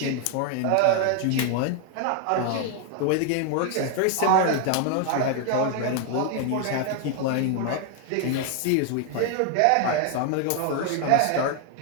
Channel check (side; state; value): both; different; correlation 0.00